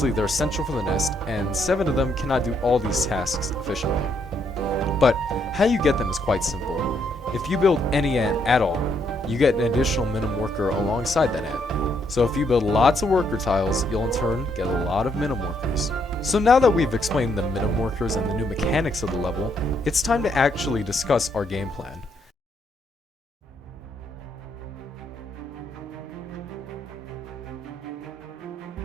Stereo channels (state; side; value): normal; both; correlation 0.74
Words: they're essential for the nest, and 7 of them cannot do all these tasks efficiently. But how you get them is quite simple. If you build any ant at all, you get an additional minimum worker alongside that ant. So if you build lots of worker tiles, you'll in turn get a lot of minimum workers. So now that we've explained the minimum workers and the new mechanics of the level, it's time to actually discuss our game plan.